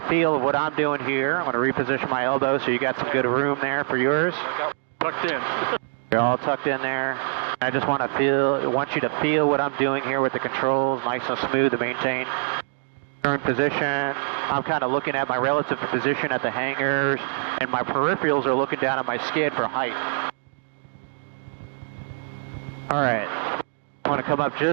feel of what I'm doing here. I'm going to reposition my elbow so you got some good room there for yours. I got tucked in. You're all tucked in there. I just want you to feel what I'm doing here with the controls, nice and smooth to maintain current position. I'm kind of looking at my relative position at the hangars, and my peripherals are looking down at my skid for height. All right, I want to come up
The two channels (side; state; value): left; silent; 61 dB below the other